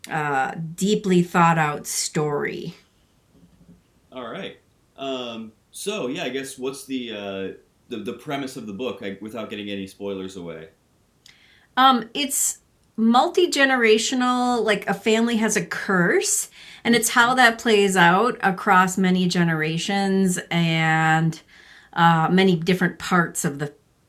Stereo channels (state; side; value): identical; both; correlation 1.00